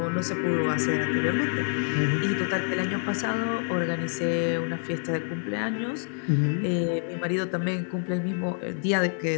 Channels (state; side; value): silent; right; 60 dB below the other